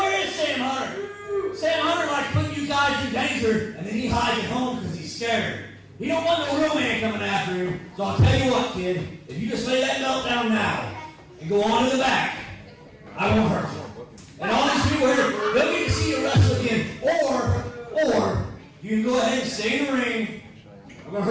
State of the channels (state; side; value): identical; both; correlation 1.00